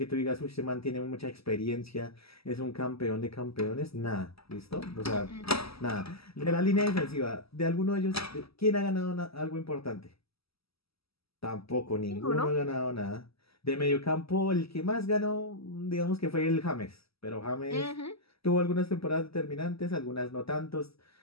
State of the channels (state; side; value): late; right; 0.76 ms